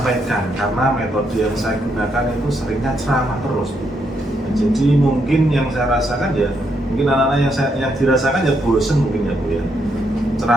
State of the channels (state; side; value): normal; both; correlation 0.77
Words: karena metode yang saya gunakan itu seringnya ceramah terus. Jadi mungkin yang saya rasakan ya mungkin anak-anak yang dirasakan ya bosen mungkin ya Bu ya.